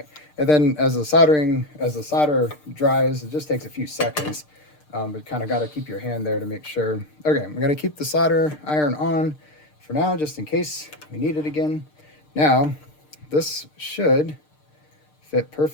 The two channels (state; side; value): late; right; 6.6 ms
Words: and then as the solder dries, it just takes a few seconds, but kind of got to keep your hand there to make sure. Okay, I'm gonna keep the solder iron on for now, just in case we need it again. Now, this should fit